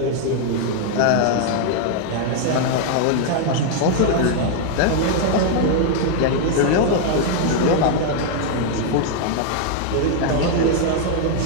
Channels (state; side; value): different; both; correlation 0.00